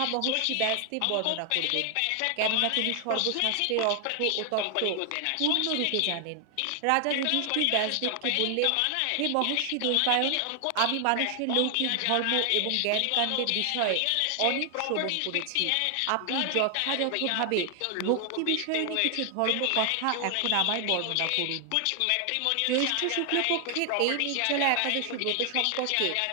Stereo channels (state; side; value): different; both; correlation 0.00